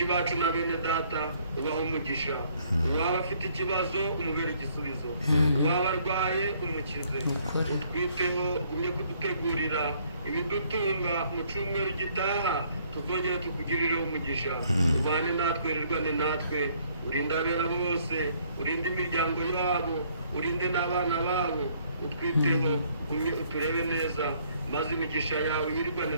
bacu na bene data ubaha umugisha. Uwaba afite ikibazo umubere igisubizo, uwaba arwaye umukize. Utwiteho ugumye kudutegurira ibidutunga mu cyumweru gitaha, tuzongera tukugirire umugisha. Ubane natwe, rirwane natwe, urinde abera bose, urinde imiryango yabo, urinde n'abana babo. Utwiteho ugumye uturebe neza, maze imigisha yawe yirigane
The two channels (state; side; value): inverted; both; correlation -0.64